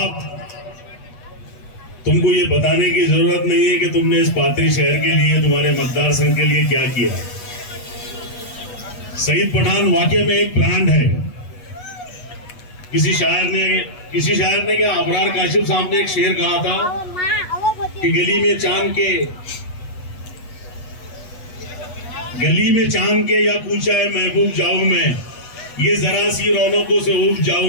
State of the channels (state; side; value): late; right; 8.3 ms